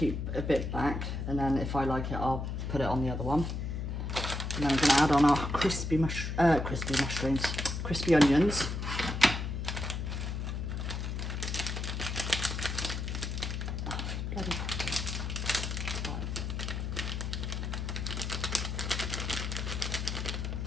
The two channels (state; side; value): noise; left; hum, 3 dB below the sound